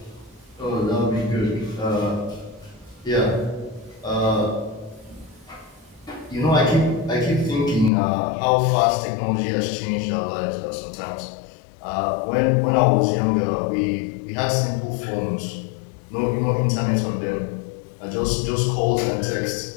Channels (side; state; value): right; drops out; at 7.9 s